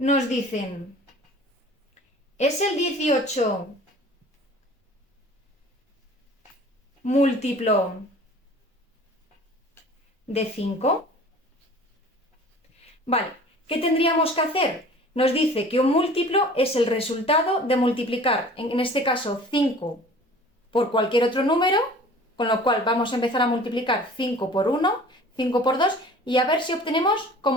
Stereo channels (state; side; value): normal; both; correlation 0.46